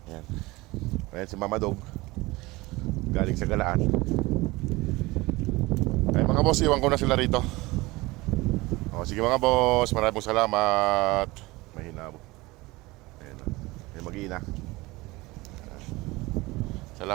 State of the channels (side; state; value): left; quieter; 21.5 dB